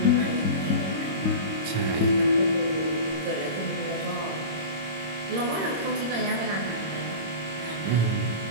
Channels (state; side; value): late; left; 26 ms